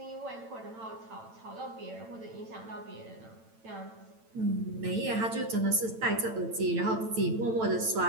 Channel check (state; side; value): late; left; 9.0 ms